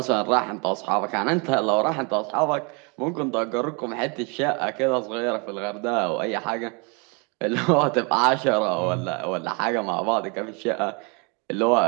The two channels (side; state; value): left; quieter; 32.3 dB